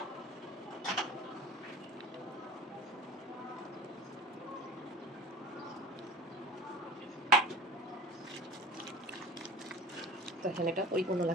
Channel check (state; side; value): normal; both; correlation 0.39